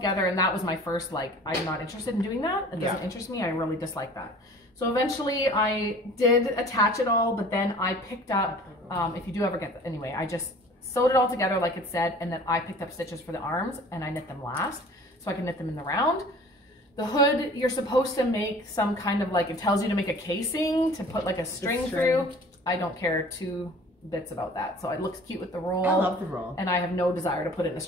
and that was my first like, I'm not interested in doing that. It doesn't interest me. I really dislike that. So eventually I did attach it all, but then I picked up, if you do ever get that, anyway, I just sewed it all together like it said, and then I picked up stitches for the arms, and I knit them last, so I can knit them in the round. The hood, you're supposed to make some kind of like, it tells you to make a casing to put like a string through. I don't care 2 bits about that. So it looks cute with the roll. I love the roll. And I have no desire to put in a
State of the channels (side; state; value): both; normal; correlation 0.46